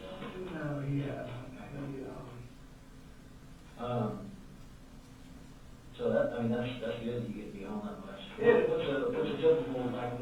going? No, he hasn't. So that, I mean, that's good, you get to be home that much. Yeah. What's a typical, like,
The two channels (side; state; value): both; identical; correlation 1.00